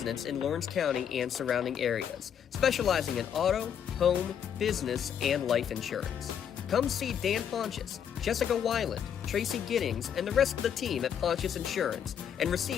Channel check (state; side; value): quieter; right; 8.6 dB